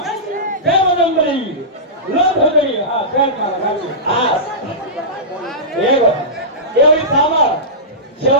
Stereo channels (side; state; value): both; normal; correlation -0.17